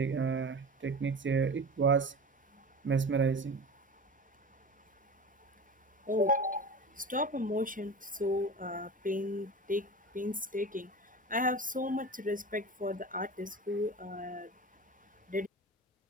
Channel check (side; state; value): both; normal; correlation 0.32